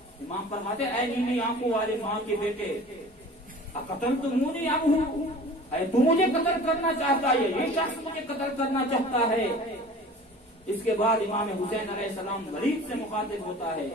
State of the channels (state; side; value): normal; both; correlation 0.43